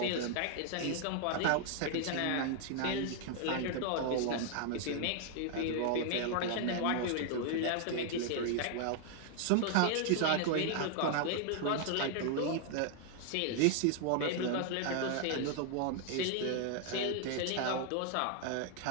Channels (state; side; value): different; both; correlation 0.00